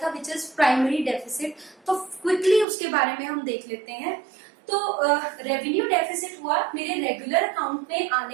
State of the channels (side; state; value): left; drops out; at 2.7 s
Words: विच इज प्राइमरी डेफिसिट। तो क्विकली उसके बारे में हम देख लेते हैं। तो रेवेन्यू डेफिसिट हुआ मेरे रेगुलर अकाउंट में